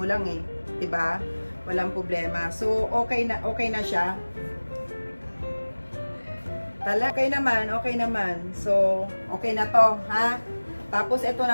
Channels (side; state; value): both; inverted; correlation -1.00